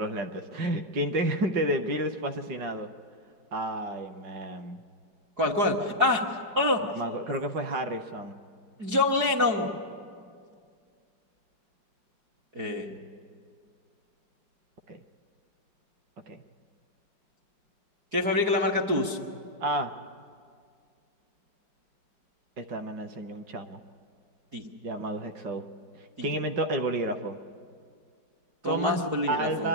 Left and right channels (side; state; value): left; late; 4.8 ms